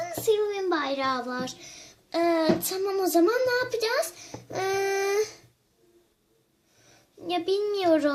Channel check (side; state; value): both; identical; correlation 1.00